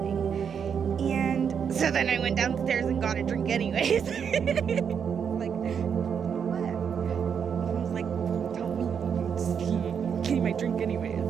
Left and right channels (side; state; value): left; quieter; 7.2 dB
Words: And So then I went downstairs and got a drink anyways. Like, what? I was like, tell me, just give me my drink anyways.